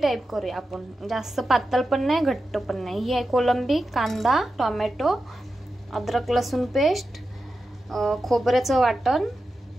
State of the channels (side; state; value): both; normal; correlation 0.91